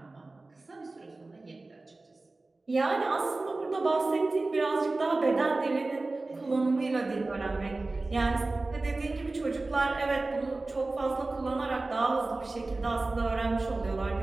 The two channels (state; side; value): quieter; left; 3.2 dB